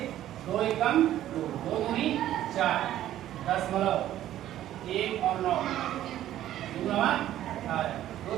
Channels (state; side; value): quieter; left; 12.7 dB